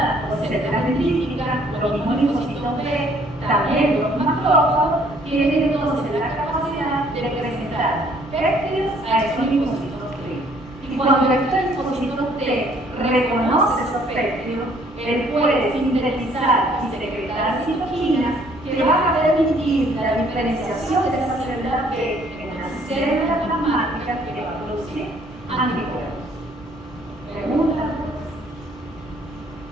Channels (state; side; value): normal; both; correlation 0.61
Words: por células dendríticas, los mismos linfocitos B, también los macrófagos, tienen entonces la capacidad de presentar péptidos a esos linfocitos T. Y cuando estos linfocitos T reconoce esos péptidos, él puede sintetizar y secretar citoquinas que van a permitir la diferenciación de esas células B en las células plasmáticas que van a producir anticuerpos. ¿Pregunta?